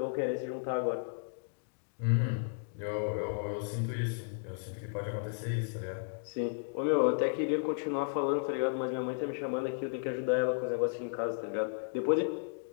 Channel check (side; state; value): right; silent; digital silence